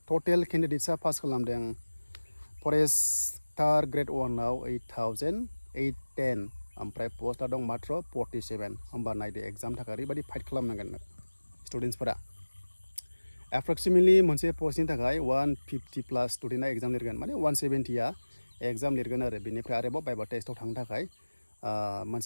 टटेल केन्डिडेट्सआ पास खालामदों फरेस्टार ग्रेड 1आव 8810 ओमफ्राय पस्टआ दं मात्र 47 होमबा नायदो एग्जामनि थाखाय ओरैबायदि फाइट खालामनांगोन स्टुडेन्टसफोरा। एप्रक्सिमेटलि मोनसे पस्टनि थाखाय 150 प्लास स्टुडेन्टआ एग्जाम लिरगोन माने 170आ एग्जाम लिरगोन आरो बेनिफ्राय आरोबाव बाइबा टेस्टआव थांनो थाखाय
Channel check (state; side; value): inverted; both; correlation -1.00